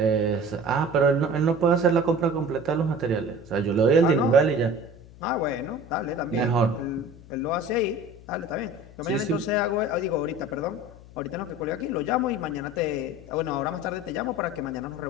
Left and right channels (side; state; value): left; noise; hum, 20 dB below the sound